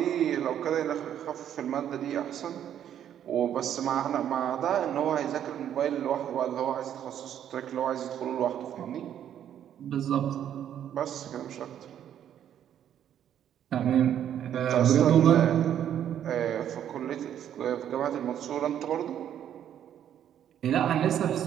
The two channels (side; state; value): left; quieter; 10.1 dB